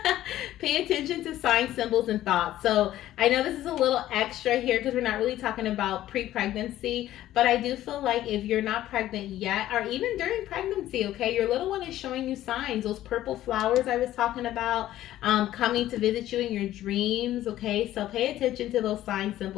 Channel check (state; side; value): quieter; right; 13.7 dB